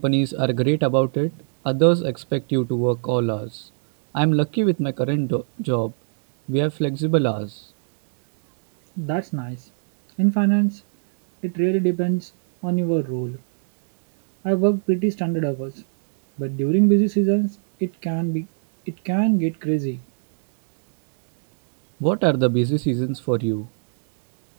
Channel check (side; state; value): left; silent; digital silence